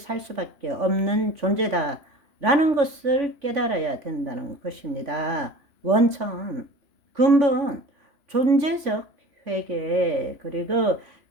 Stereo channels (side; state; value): left; late; 3.5 ms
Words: 수밖에 없는 존재다 라는 것을 깨달아야 된다는 것입니다. 원천, 근본, 존재적 회개, 그리고